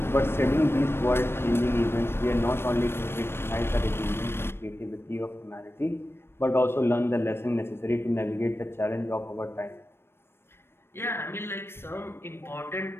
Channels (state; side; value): late; right; 0.12 ms